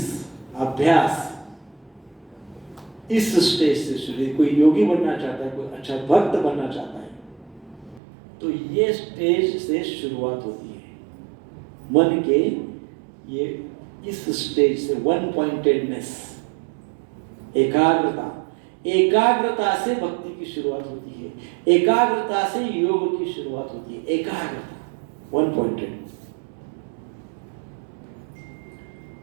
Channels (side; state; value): left; drops out; at 8.0 s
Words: अभ्यास इस स्टेज से शुरू। कोई योगी बनना चाहता है, कोई अच्छा भक्त बनना चाहता है, तो ये स्टेज से शुरुआत होती है। मन के ये इस स्टेज से वन पॉइंटेडनेस, एकाग्रता, एकाग्रता से भक्ति की शुरुआत होती है, एकाग्रता से योग की शुरुआत होती है। एकाग्रता 1 पॉइंट।